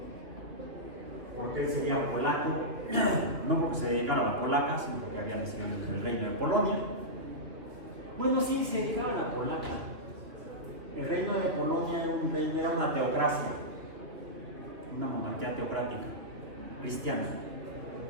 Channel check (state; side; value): late; left; 2.6 ms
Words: porque él sería polaco, no porque se dedicara a la polaca, sino porque había nacido en el reino de Polonia. Bueno, sí, se dedicaba a la polaca. El reino de Polonia era una teocracia, una monarquía teocrática, cristiana,